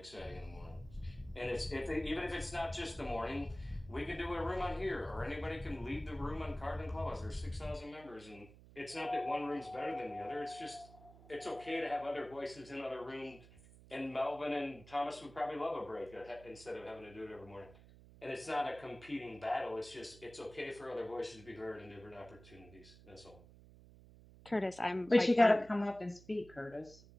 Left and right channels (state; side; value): noise; right; hum, 20 dB below the sound